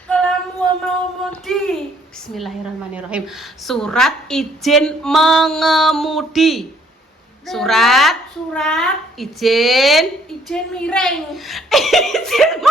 Kalau mau mudi. Bismillahirrahmanirrahim. Surat izin mengemudi. Surat izin miring. izin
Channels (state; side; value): normal; both; correlation 0.63